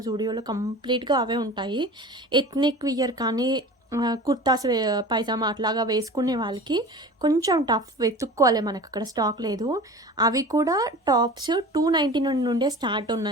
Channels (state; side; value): normal; both; correlation 0.37